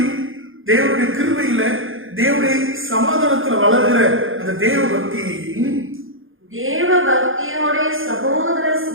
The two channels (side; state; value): left; late; 0.59 ms